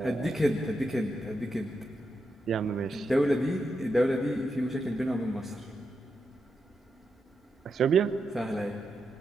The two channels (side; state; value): both; normal; correlation 0.85